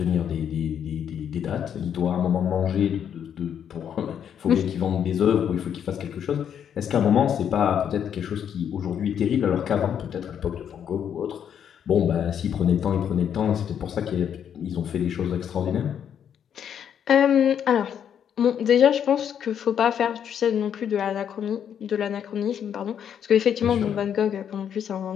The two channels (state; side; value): quieter; right; 8.7 dB